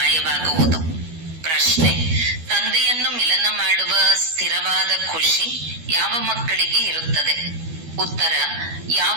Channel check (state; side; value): late; left; 12 ms